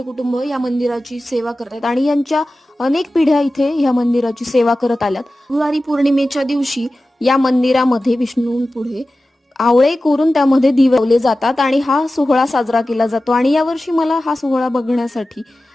कुटुंब या मंदिराची सेवा करतात आणि यांच्या अनेक पिढ्या इथे या मंदिराची सेवा करत आल्यात. त्रिपुरारी पौर्णिमेच्या दिवशी या मंदिरामध्ये विष्णूंपुढे आवळे कोरून त्यामध्ये दिवे लावले जातात आणि हा सोहळा साजरा केला जातो. आणि यावर्षी मला हा सोहळा बघण्यासाठी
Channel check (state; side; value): normal; both; correlation 0.95